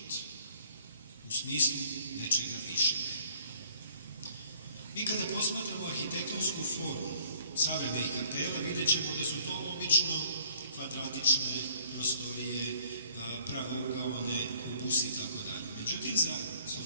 u smislu nečega višeg. Mi kada posmatramo arhitektonsku formu savremenih kapela vidjet ćemo da su to obično kvadratične prostorije, pravougaone, kubusi i tako dalje. Međutim, za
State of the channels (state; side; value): inverted; both; correlation -0.58